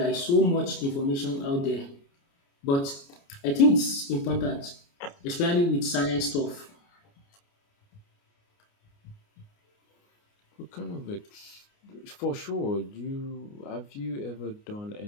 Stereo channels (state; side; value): late; right; 29 ms